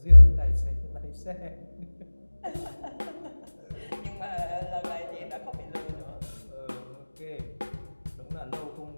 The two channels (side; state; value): both; inverted; correlation -1.00